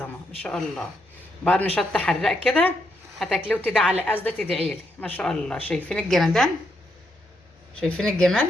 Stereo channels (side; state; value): both; normal; correlation 0.79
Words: ما شاء الله. بعد ما شط حراق كده هتاكليه وتدعي على قصدة تدعيلي ما شاء الله. شايفين الجمدان؟ شايفين